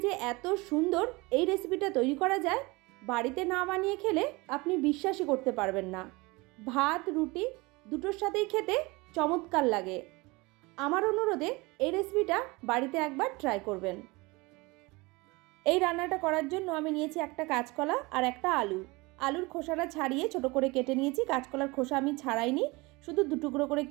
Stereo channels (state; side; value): quieter; left; 24.2 dB